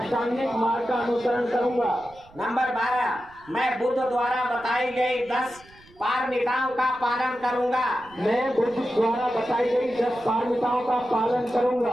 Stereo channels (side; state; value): right; noise; rumble, 26 dB below the sound